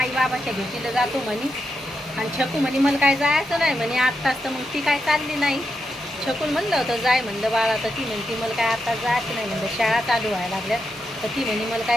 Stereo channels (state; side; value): normal; both; correlation 0.85